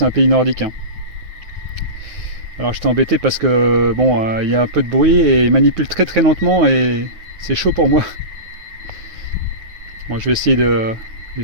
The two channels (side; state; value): left; late; 9.5 ms